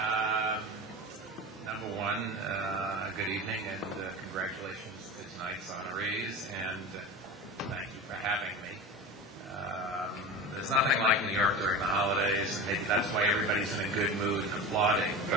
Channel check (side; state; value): both; normal; correlation 0.29